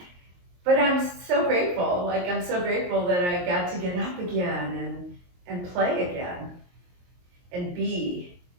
But I'm so grateful. Like, I'm so grateful that I got to get up again and play again and be,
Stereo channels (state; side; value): late; left; 22 ms